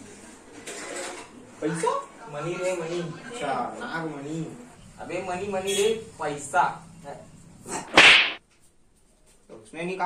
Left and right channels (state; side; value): identical; both; correlation 1.00